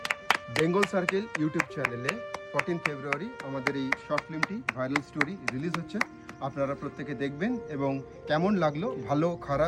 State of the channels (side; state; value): both; identical; correlation 1.00